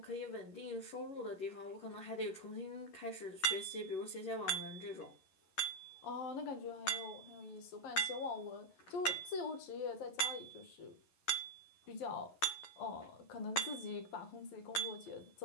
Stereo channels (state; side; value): late; right; 11 ms